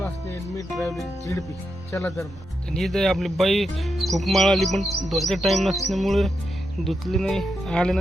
रासने, मी ट्रॅव्हलिंग झिडपी. चला तर मग. आणि इथे आपली बाई खूप माळाली, पण धुवायचा टाईम नसल्यामुळे धुतली नाही.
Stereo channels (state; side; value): normal; both; correlation 0.85